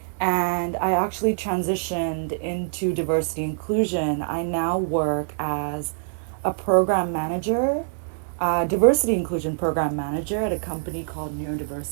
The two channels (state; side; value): silent; left; digital silence